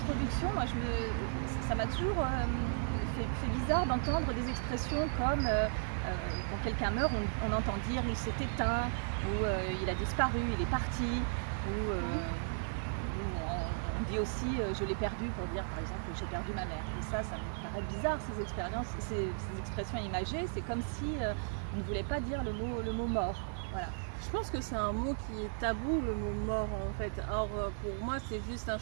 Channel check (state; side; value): silent; left; 54 dB below the other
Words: ça m'a toujours fait bizarre d'entendre des expressions comme quand quelqu'un meurt, on entend dire il s'est éteint, ou il a disparu, il est parti, ou on dit aussi je l'ai perdu pour dire par exemple j'ai perdu ma mère. Et ça me paraît bizarre ces expressions imagées. C'est comme si on ne voulait pas dire le mot mort. Voilà. Je pense que c'est un mot qui est tabou, le mot mort en fait. Or pour moi c'est juste un